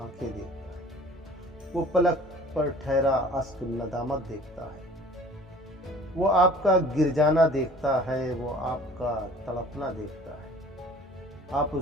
دیکھتا ہے، وہ پلک پر ٹھہرا اشک ندامت دیکھتا ہے، وہ آپ کا گر جانا دیکھتا ہے، وہ آپ کا تڑپنا دیکھتا ہے۔ آپ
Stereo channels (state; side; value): normal; both; correlation 0.49